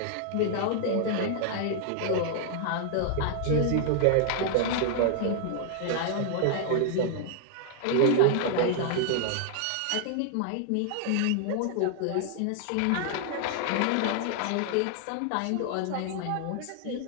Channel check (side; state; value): both; different; correlation -0.01